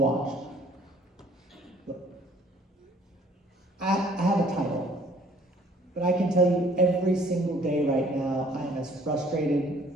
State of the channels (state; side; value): normal; both; correlation 0.58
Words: Look, I have a title, but I can tell you every single day right now, I am as frustrated